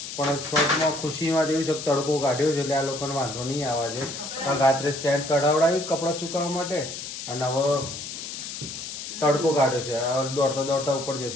પણ શોર્ટમાં ખુશીમાં જેવી છે તડકો કાઢ્યો છે એટલે આ લોકોને વાંધો નહીં આવે છે. પણ રાત્રે સ્ટેન્ડ કઢાવડાવ્યું કપડાં સુકાવવા માટે અને હવે તડકો કાઢ્યો છે. હવે દોડતા દોડતા ઉપર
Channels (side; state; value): left; noise; hiss, 8 dB below the sound